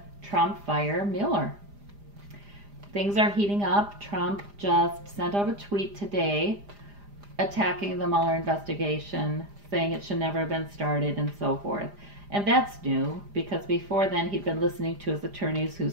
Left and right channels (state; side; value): late; left; 4.9 ms